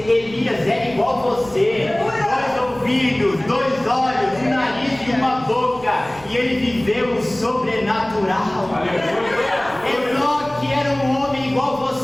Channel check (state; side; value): noise; right; rumble, 21 dB below the sound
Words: era igual a você, 2 ouvidos, 2 olhos, um nariz e uma boca, e ele viveu o sobrenatural. Enoque era um homem igual a